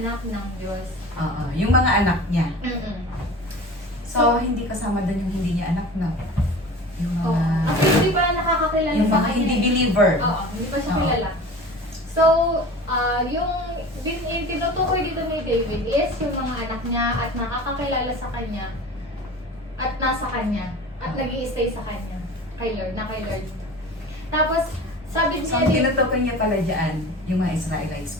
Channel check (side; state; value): both; normal; correlation 0.37